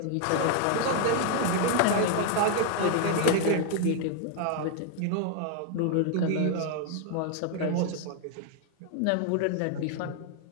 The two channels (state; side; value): different; both; correlation 0.00